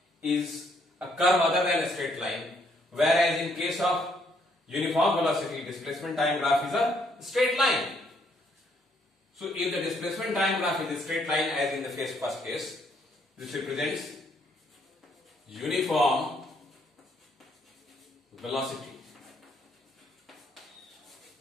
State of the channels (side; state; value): both; normal; correlation 0.70